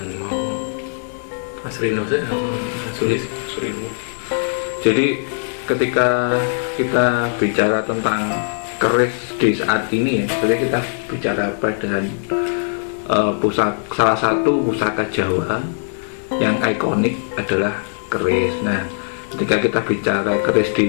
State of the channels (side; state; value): right; silent; digital silence